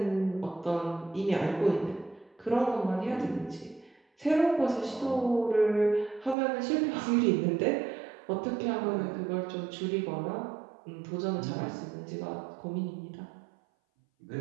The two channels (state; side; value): drops out; left; at 6.4 s